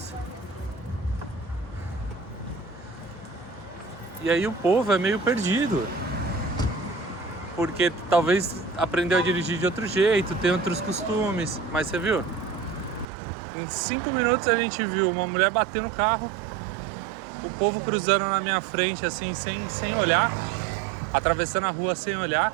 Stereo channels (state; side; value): drops out; left; at 13.1 s